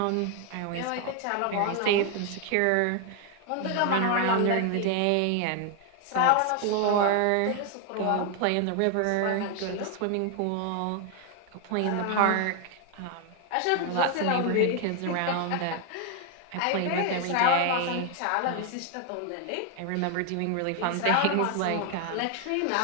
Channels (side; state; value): both; different; correlation 0.01